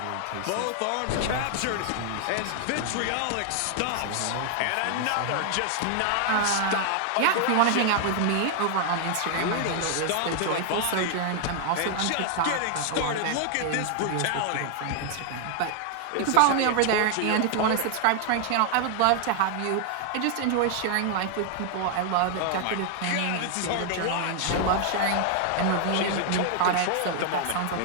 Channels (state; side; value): different; both; correlation 0.00